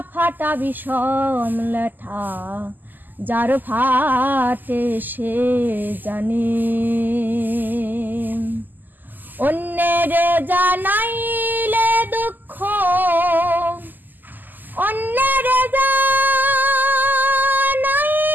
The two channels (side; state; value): left; late; 0.087 ms